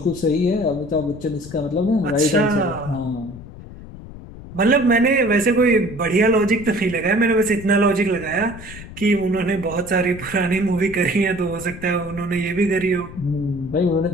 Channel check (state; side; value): noise; left; rumble, 15 dB below the sound